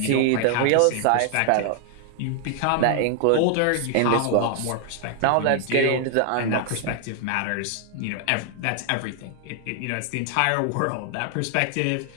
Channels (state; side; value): different; both; correlation 0.00